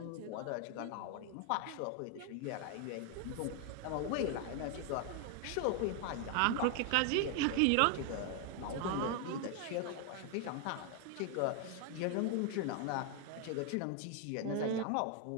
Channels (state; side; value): different; both; correlation 0.00